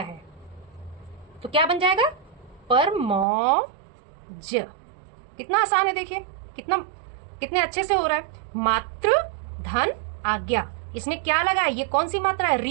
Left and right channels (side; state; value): left; drops out; at 3.2 s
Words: तो क्या बन जाएगा परमौज। कितना आसान है, देखिए कितने अच्छे से हो रहा है। मातृ धन आज्ञा, इसमें क्या लगा है, ये कौन सी मात्रा है,